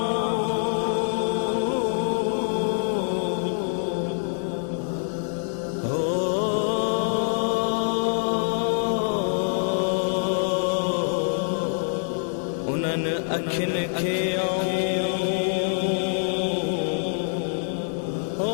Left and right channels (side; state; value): right; silent; 62 dB below the other